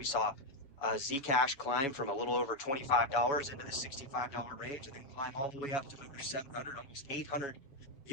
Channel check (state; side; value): late; right; 7.2 ms